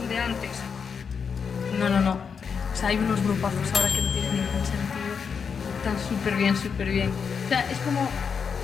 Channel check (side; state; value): right; quieter; 6.2 dB